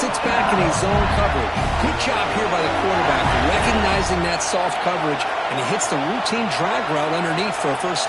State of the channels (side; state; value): both; identical; correlation 1.00